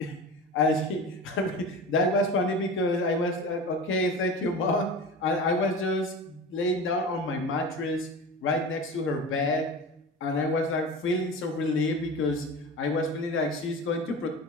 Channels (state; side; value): normal; both; correlation 0.32